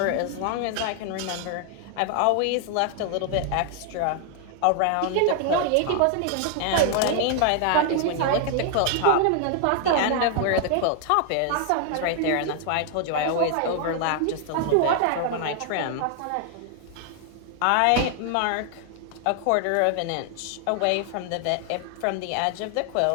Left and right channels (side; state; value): both; different; correlation 0.00